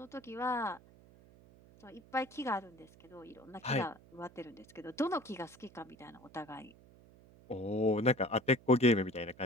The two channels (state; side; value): noise; right; hum, 24 dB below the sound